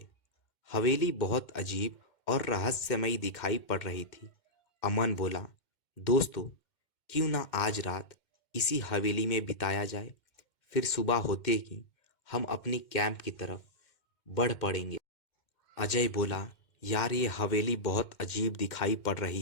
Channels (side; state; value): right; late; 2.1 ms